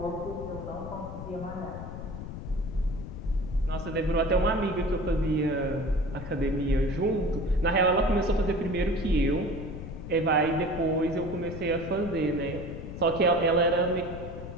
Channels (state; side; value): noise; left; rumble, 9 dB below the sound